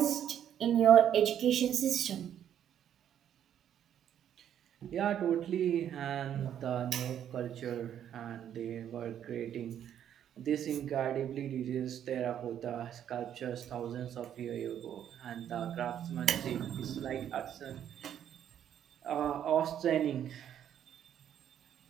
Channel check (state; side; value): quieter; left; 9.9 dB